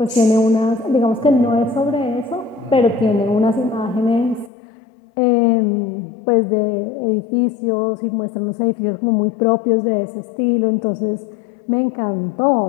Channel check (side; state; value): right; drops out; at 4.5 s